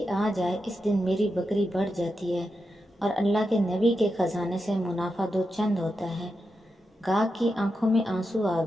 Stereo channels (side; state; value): both; normal; correlation 0.88